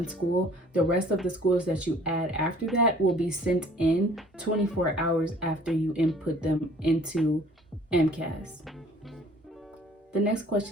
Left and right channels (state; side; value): normal; both; correlation 0.53